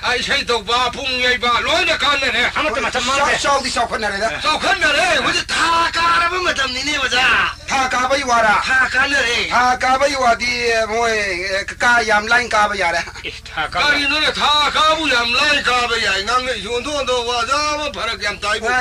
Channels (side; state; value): both; identical; correlation 1.00